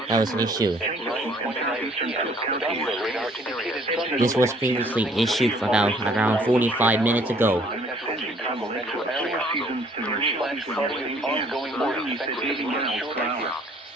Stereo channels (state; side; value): normal; both; correlation 0.60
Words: that was issued. This was previously issued about around 45 minutes ago.